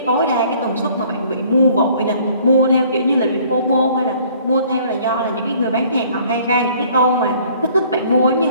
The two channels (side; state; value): both; inverted; correlation -0.57